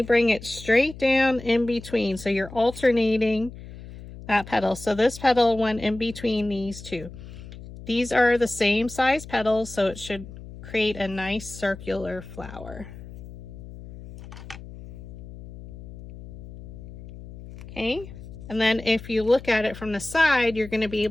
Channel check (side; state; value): left; noise; hum, 15 dB below the sound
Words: bring it straight down in between. So you're alternating that petal. So this petal went in between these 2. These are the same size petals, so it should create a nice circular flower. Okay. And then if you look at it from the side, you're going to be